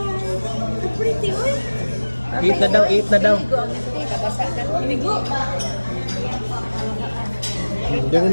So pretty, oy! Eat na daw, eat na daw. Inigo! Doon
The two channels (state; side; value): inverted; both; correlation -1.00